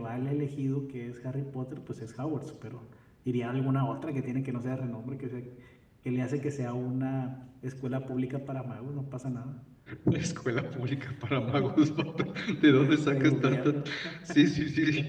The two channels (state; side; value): identical; both; correlation 1.00